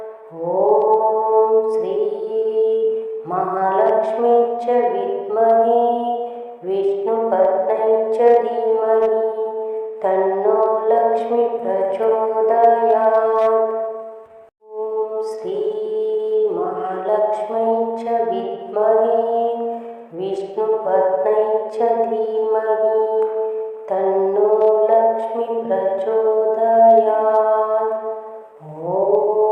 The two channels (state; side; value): identical; both; correlation 1.00